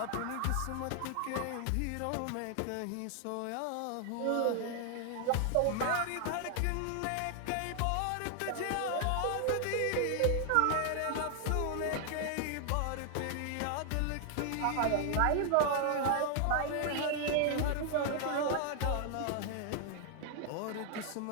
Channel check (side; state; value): both; different; correlation 0.00